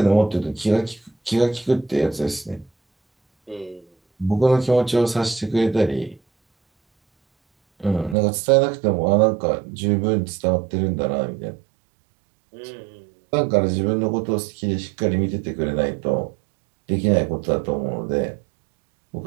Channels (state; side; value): drops out; left; at 8.2 s